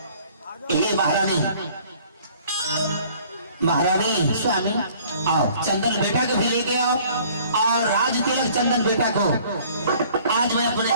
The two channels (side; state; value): both; inverted; correlation -0.55